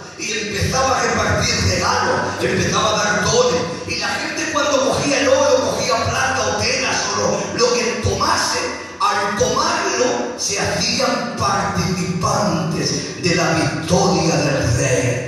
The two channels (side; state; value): both; identical; correlation 1.00